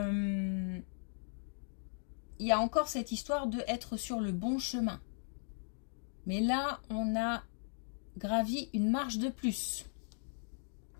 y a encore cette histoire de être sur le bon chemin. Mais là, on a gravi une marche de plus.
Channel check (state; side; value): silent; right; digital silence